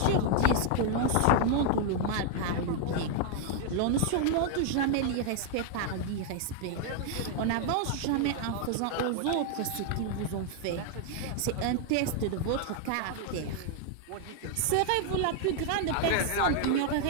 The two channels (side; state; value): both; different; correlation 0.00